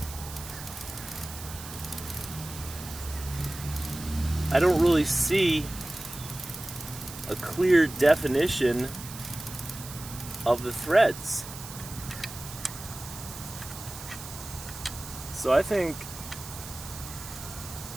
I don't really see a clear definition of the threads. So I think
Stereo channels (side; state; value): right; noise; hiss, 12 dB below the sound